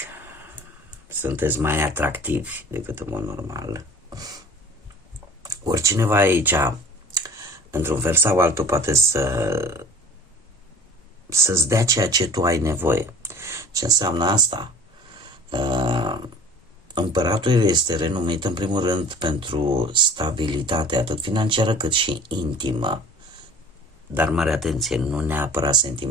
sunteți mai atractivi decât în mod normal, ori cineva aici, într-un fel sau altul, poate să-ți dea ceea ce tu ai nevoie. Ce înseamnă asta? Împăratul este renumit în primul rând pentru stabilitate, atât financiară cât și intimă, dar mare atenție, nu neapărat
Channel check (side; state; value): both; normal; correlation 0.45